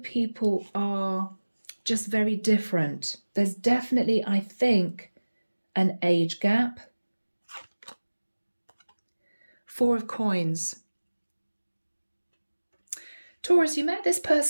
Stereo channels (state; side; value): inverted; both; correlation -1.00